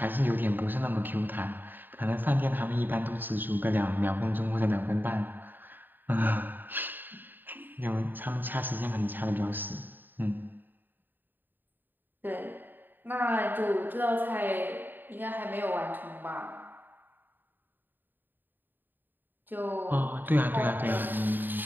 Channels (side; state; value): left; late; 0.092 ms